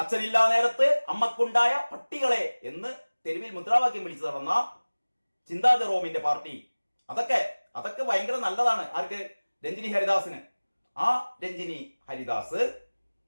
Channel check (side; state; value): both; inverted; correlation -1.00